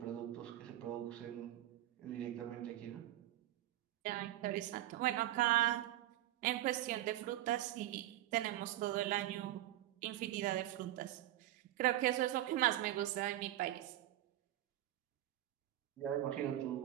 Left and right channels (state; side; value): quieter; left; 14.3 dB